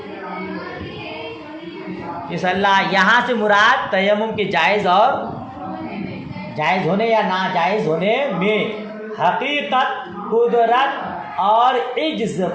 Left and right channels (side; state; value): both; identical; correlation 1.00